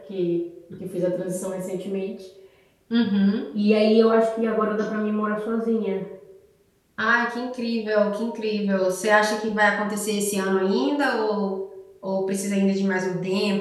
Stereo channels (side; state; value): both; identical; correlation 1.00